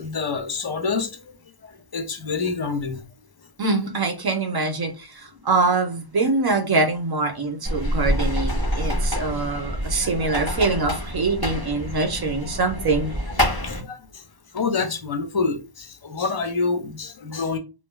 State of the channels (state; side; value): late; left; 1.1 ms